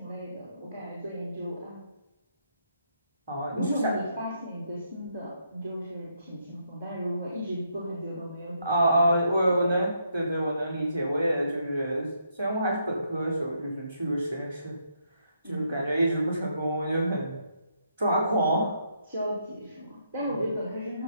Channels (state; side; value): inverted; both; correlation -0.76